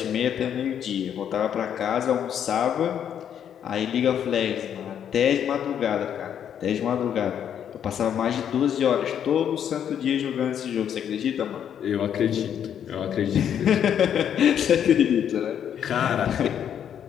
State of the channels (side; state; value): right; quieter; 9.1 dB